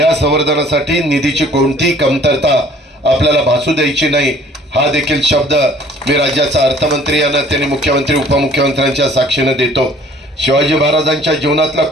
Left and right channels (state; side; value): normal; both; correlation 0.55